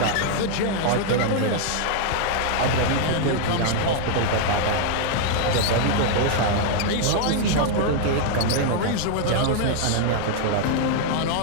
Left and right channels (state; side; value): different; both; correlation 0.00